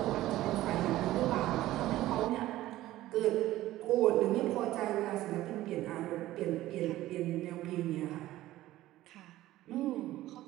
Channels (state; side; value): quieter; left; 15.5 dB